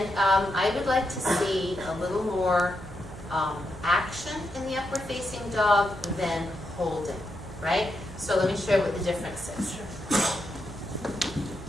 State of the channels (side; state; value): right; noise; hum, 17 dB below the sound